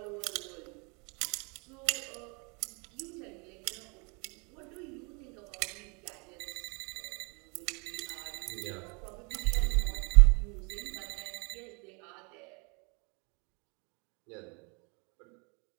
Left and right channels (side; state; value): left; quieter; 32.5 dB